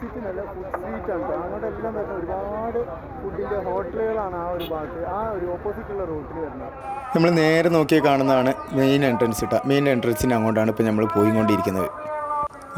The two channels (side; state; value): both; identical; correlation 1.00